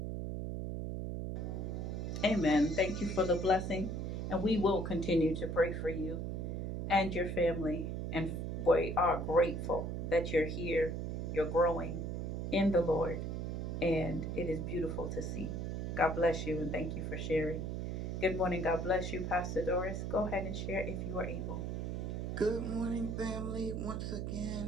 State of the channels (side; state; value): right; noise; hum, 3 dB below the sound